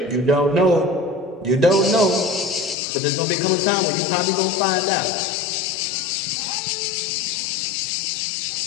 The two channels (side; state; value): right; drops out; at 2.8 s